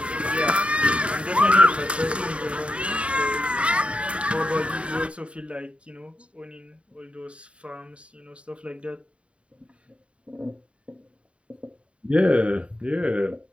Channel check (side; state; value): left; late; 0.060 ms